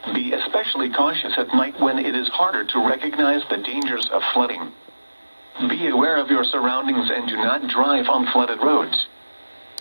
Be especially cautious at night when it is harder to recognize the dangers of flooding. Be aware of your surroundings and do not drive on flooded roads.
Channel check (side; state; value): both; inverted; correlation -1.00